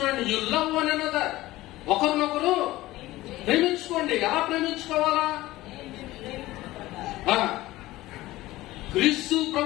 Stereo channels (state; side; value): quieter; right; 17.4 dB